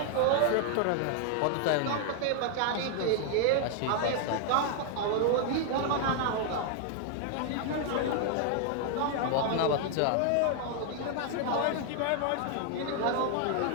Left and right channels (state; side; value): different; both; correlation 0.00